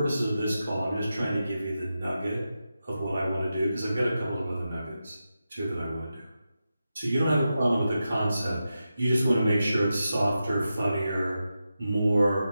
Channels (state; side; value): inverted; both; correlation -0.90